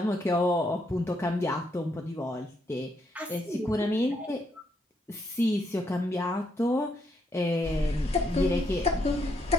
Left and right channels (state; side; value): normal; both; correlation 0.74